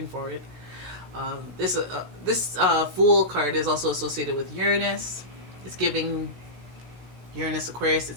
forward. This Fool card is also associated with Uranus. It's giving Uranus, Aquarius,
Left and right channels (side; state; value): left; late; 16 ms